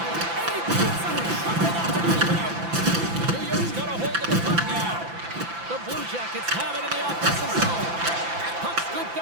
And he gets him. Shuffled up and keep it out. New York's got a hold of the puck now. The Blue Jackets have it in the offensive zone. Puck scooped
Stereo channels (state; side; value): late; left; 5.9 ms